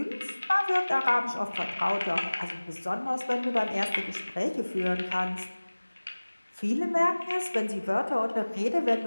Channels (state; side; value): inverted; both; correlation -1.00